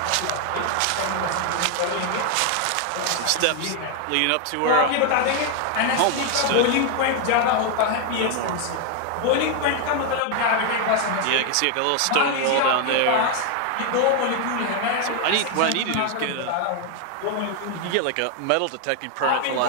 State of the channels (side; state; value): both; different; correlation 0.01